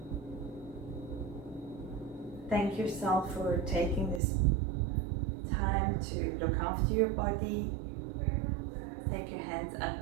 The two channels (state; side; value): drops out; left; at 4.2 s